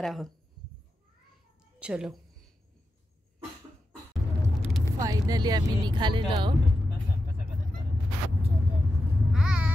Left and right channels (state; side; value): normal; both; correlation 0.89